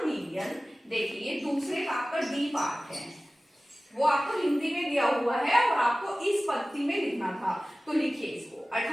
मिलियन। देखिए, दूसरे का आपका डी पार्ट है, वो आपको हिंदी में दिया हुआ है और आपको इस पद्धति में लिखना था। तो लिखिए इसको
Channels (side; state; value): both; normal; correlation 0.97